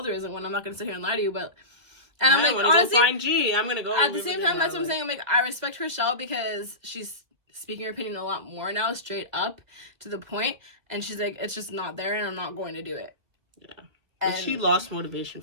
there isn't one. I'm not gonna sit here and lie to you, but." And I'm like, honestly, find G. I'm gonna go. At the same time, that's what I'm saying. I'm like, I respect Chrishell because she's speaking her opinion a lot more now, straight up to the point. And she's like, it's just not there, and I'm not going to do it. Yeah. And she lost motivation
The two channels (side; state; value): left; late; 1.9 ms